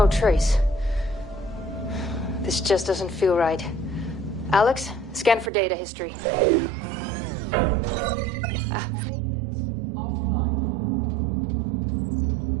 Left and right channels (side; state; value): left; drops out; at 5.5 s